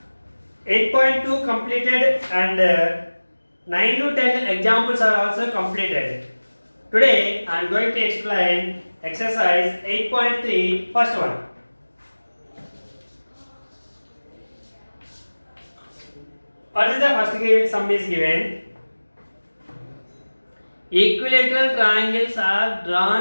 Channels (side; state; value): both; inverted; correlation -1.00